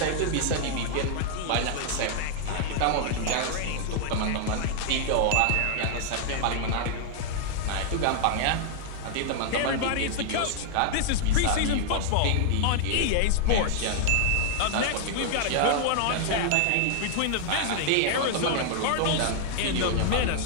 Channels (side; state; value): both; different; correlation -0.01